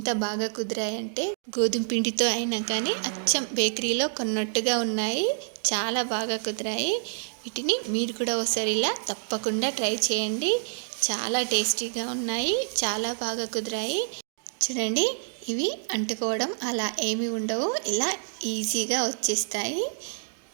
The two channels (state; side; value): silent; left; 60 dB below the other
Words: బాగా కుదిరాయంటే గోధుమ పిండితో అయినా కానీ అచ్చం బేకరీలో కొన్నట్టుగా ఉన్నాయి. చాలా బాగా కుదిరాయి. వీటిని మీరు కూడా ఒకసారి ఇలా తప్పకుండా ట్రై చేయండి. చాలా టేస్టీగా ఉన్నాయి, చాలా బాగా కుదిరాయి. చూడండి, ఇవి అంటుకోవడం అలా ఏమీ ఉండవు, ఇలా ఈజీగా వచ్చేస్తాయి.